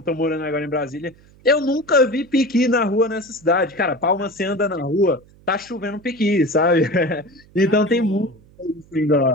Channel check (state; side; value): noise; right; hum, 27 dB below the sound